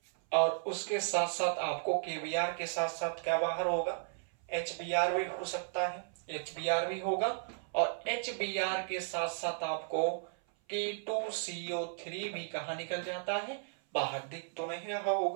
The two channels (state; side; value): silent; left; 55 dB below the other